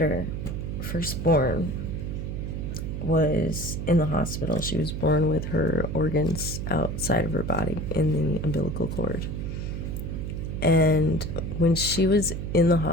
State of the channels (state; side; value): noise; right; hum, 4 dB below the sound